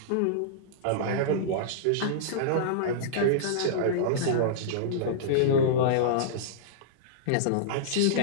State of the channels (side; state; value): both; different; correlation -0.03